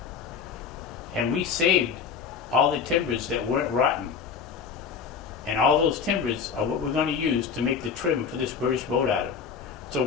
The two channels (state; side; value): quieter; right; 6.3 dB